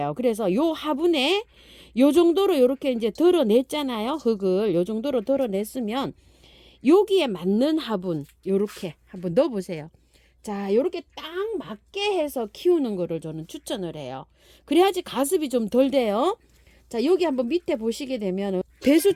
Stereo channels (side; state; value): both; identical; correlation 1.00